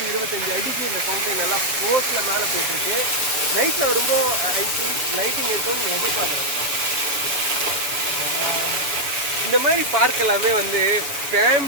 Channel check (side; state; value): left; late; 7.2 ms